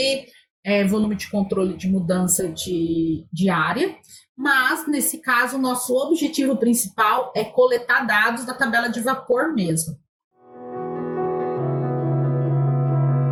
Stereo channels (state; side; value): identical; both; correlation 1.00